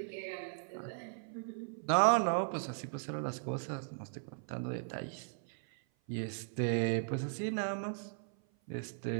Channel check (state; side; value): silent; left; 53 dB below the other